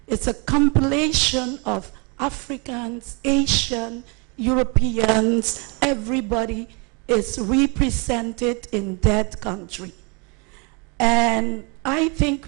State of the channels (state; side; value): quieter; left; 32.1 dB